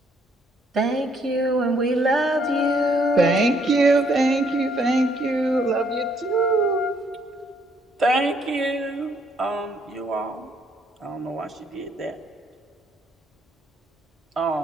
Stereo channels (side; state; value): both; normal; correlation 0.69